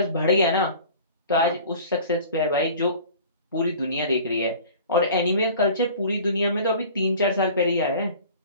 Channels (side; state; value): both; inverted; correlation -0.43